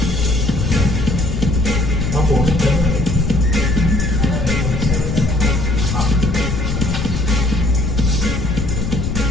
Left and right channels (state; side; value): noise; left; rumble, 3 dB below the sound